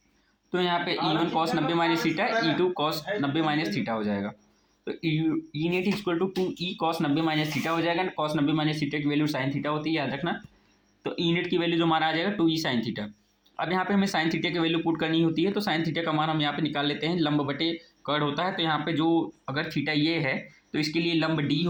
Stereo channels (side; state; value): both; identical; correlation 1.00